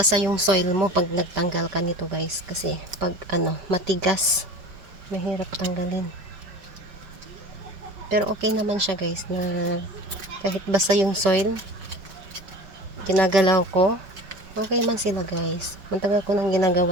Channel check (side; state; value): left; late; 5.2 ms